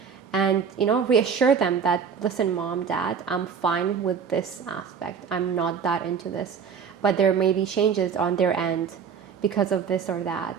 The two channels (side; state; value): left; quieter; 6.7 dB